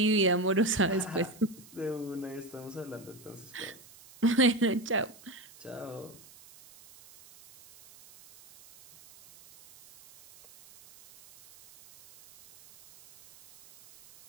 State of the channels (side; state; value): right; noise; hiss, 23 dB below the sound